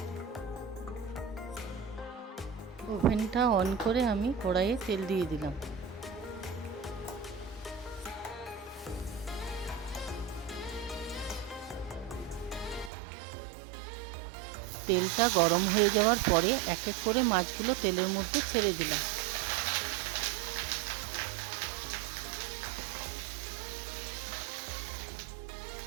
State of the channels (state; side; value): drops out; left; at 12.9 s